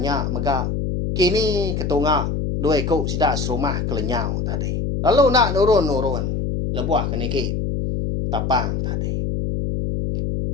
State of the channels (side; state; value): left; noise; hum, 1 dB below the sound